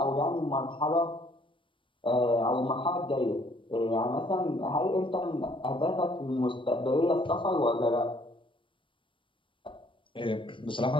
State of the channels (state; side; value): late; right; 0.25 ms